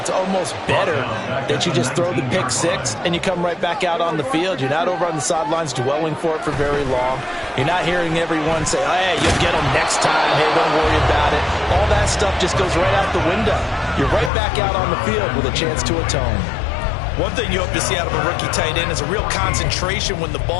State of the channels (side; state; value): right; drops out; at 14.3 s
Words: almost better that you just throw the pick 6 and you come right back out on the field. You're not over on the sidelines dwelling for it for very long. You're not hearing everyone say, hey, you'll get them next time. Hey, don't worry about it. All that stuff just goes right out the window. You're right back out on the field with a chance to atone. One thing you hope to see out of a rookie tight end is a real concentration when the